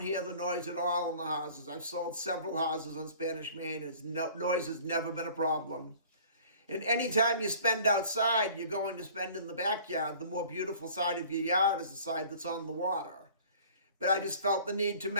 hear the noise at all in the houses. I've sold several houses on Spanish Main. Noise has never been a problem. And anytime you spend outside, you're going to spend in the backyard. The more beautiful side of your yard is the side that's on the water. But I just felt the need to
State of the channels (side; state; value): both; inverted; correlation -0.49